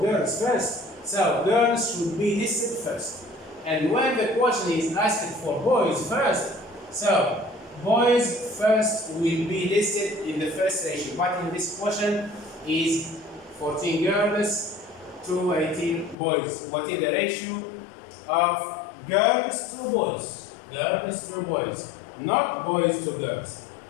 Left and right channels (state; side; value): drops out; right; at 16.2 s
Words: girls first, so girls should be listed first. And when the question is asking for boys first, so boys first will be listed in the first ratio. But in this question is 14 girls to 18 boys. What is the ratio of girls to boys? Girls to boys, not boys to girls.